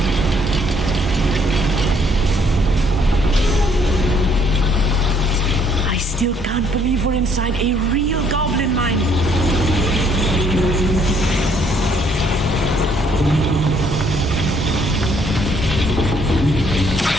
I still can't believe we're inside a real goblin mine.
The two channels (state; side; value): normal; both; correlation 0.65